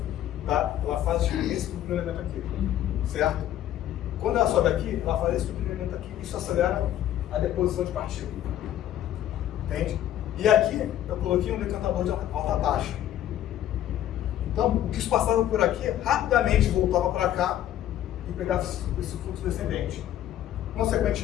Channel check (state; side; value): quieter; right; 12.0 dB